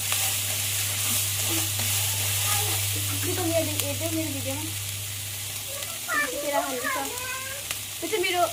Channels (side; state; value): both; identical; correlation 1.00